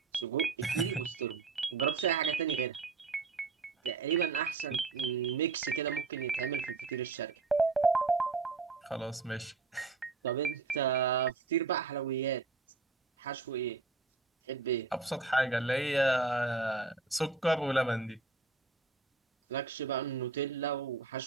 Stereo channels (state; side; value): quieter; left; 4.2 dB